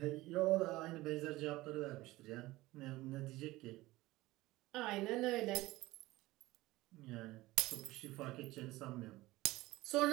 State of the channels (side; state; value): left; quieter; 18.7 dB